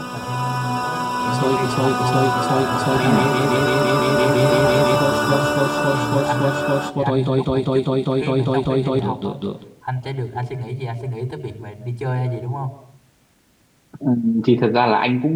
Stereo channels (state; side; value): identical; both; correlation 1.00